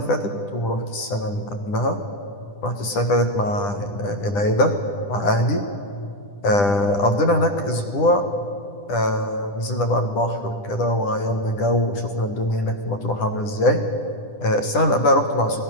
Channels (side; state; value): right; late; 10 ms